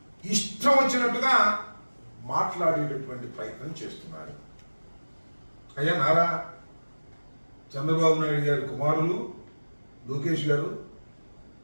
ఇష్టం వచ్చినట్టుగా మాట్లాడేటటువంటి ప్రయత్నం చేస్తున్నారు. అయ్యా నారా చంద్రబాబు నాయుడు గారి కుమారులు లోకేష్ గారు,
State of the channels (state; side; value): inverted; both; correlation -1.00